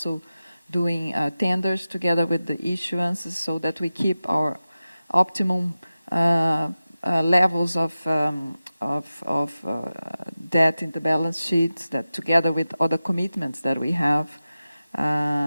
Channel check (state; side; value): inverted; both; correlation -0.94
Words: doing tenders together with the issuances so that we keep our optimum levels of debt in the balance sheet, that together with other commitments that we have